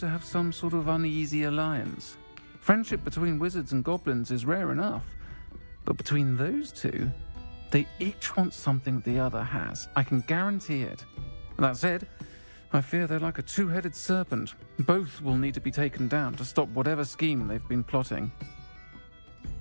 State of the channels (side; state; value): both; inverted; correlation -1.00